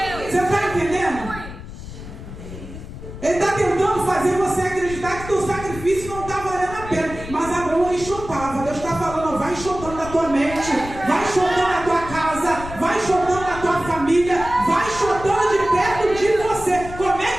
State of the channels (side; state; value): left; noise; rumble, 12 dB below the sound